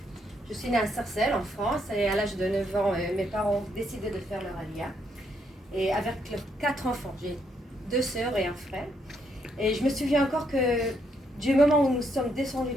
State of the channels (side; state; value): both; normal; correlation 0.75